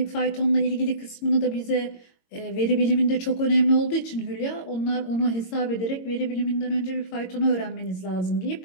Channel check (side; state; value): right; late; 22 ms